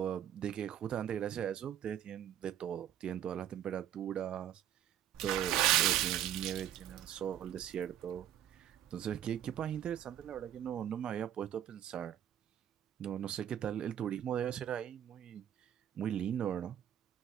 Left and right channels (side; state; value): left; quieter; 10.5 dB